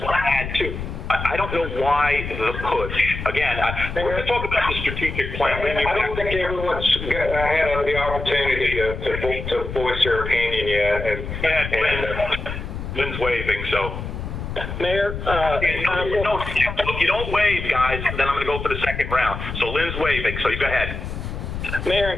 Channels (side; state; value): left; noise; rumble, 7 dB below the sound